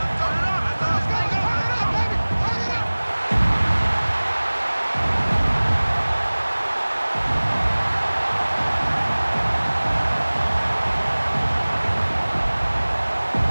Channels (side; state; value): both; inverted; correlation -1.00